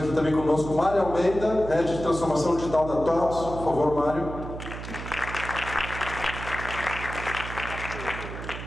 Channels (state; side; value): noise; right; hum, 9 dB below the sound